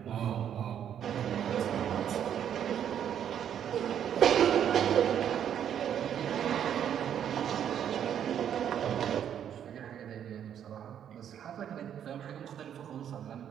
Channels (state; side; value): quieter; left; 9.4 dB